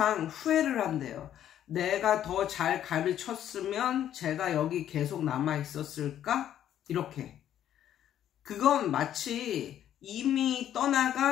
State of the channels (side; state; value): right; quieter; 10.9 dB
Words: 후회를 한대요. 내가 더 잘 가르쳤으면 제가 여기 계속 남아 있었을까? 이렇게. 그건 마치 이미